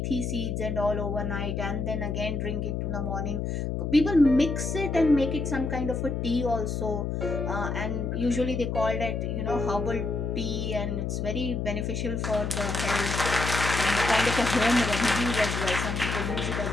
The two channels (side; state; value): left; noise; hum, 2 dB below the sound